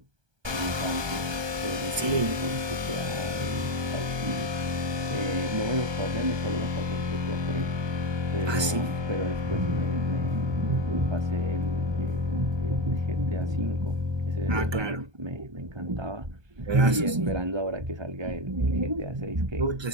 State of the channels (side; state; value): left; late; 1.2 ms